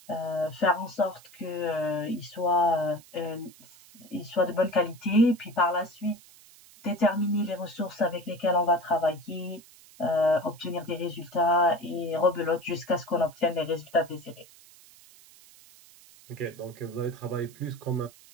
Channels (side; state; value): right; noise; hiss, 23 dB below the sound